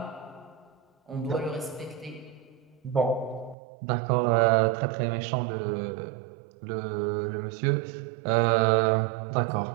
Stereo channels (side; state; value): left; drops out; at 3.6 s